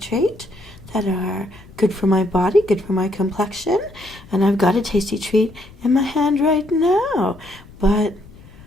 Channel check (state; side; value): noise; left; rumble, 21 dB below the sound